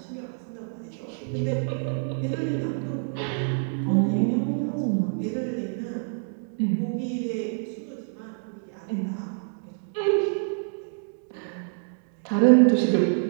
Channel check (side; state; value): left; silent; digital silence